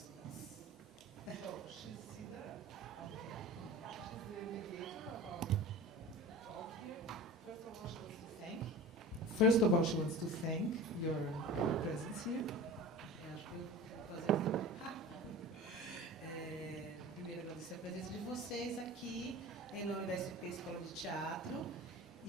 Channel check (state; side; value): normal; both; correlation 0.35